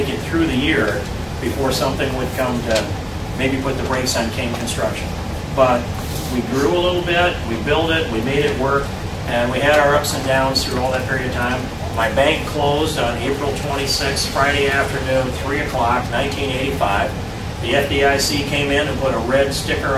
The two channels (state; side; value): identical; both; correlation 1.00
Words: it through the year before something would come to maybe put the brakes on King Construction. But we grew a little bit, we built it, we made it work, and we had our ups and downs through all that period of time. My bank closed on April 26th, Friday afternoon, 3 o'clock, 1985. The FDIC came in and put a red sticker